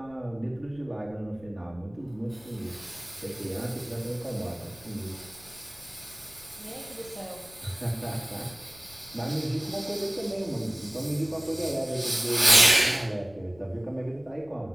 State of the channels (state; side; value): noise; left; rumble, 23 dB below the sound